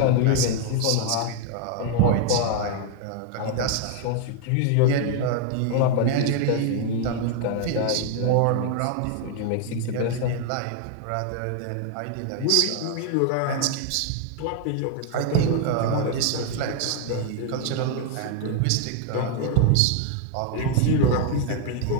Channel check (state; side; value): different; both; correlation 0.00